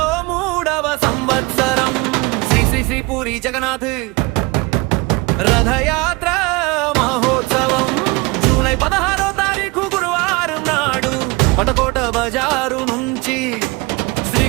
3వ సంవత్సరం శ్రీ శ్రీ శ్రీ పూరి జగన్నాథ్ రథయాత్ర మహోత్సవం జూలై 16వ తారీఖు గురువారం నాడు పటకోట బజారు నుంచి శ్రీ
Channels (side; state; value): left; quieter; 24.9 dB